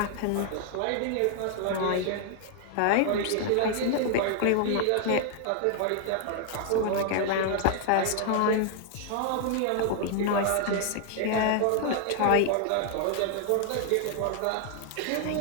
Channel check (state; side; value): different; both; correlation 0.00